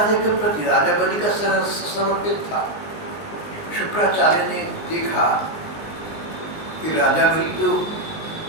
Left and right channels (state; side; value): late; right; 19 ms